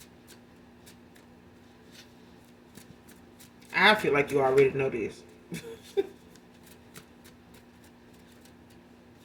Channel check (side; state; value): both; identical; correlation 1.00